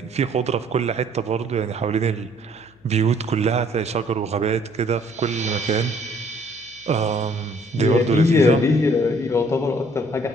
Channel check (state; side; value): noise; left; hum, 30 dB below the sound